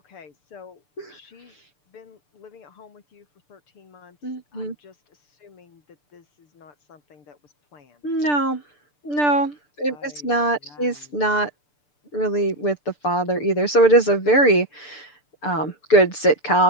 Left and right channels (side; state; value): right; late; 6.8 ms